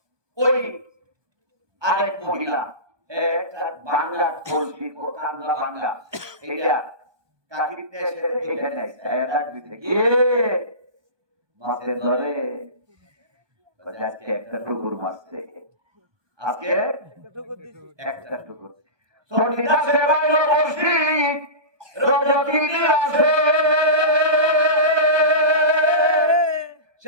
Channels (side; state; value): left; late; 1.2 ms